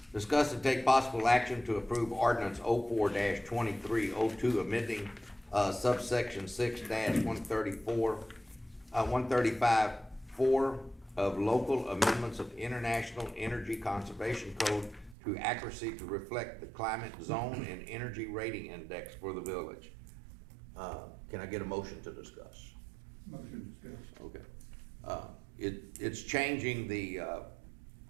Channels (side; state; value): left; drops out; at 15.2 s